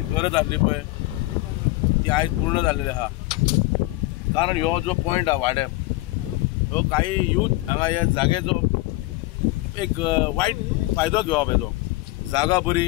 गरज आसली पळय ती आयज पूर्ण जाल्लेली आहा. कारण ह्यो जो पॉयंट आहा वाड्यार, ह्यो काही यूथ हांगा ह्या जागेचो एक वायट फायदो घेवप येतो. जागा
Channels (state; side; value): quieter; right; 19.6 dB